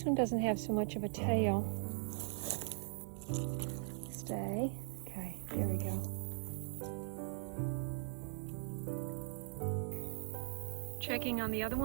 one doesn't have so much of a tail. Stay. Okay, there we go. Checking on the other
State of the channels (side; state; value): left; silent; 51 dB below the other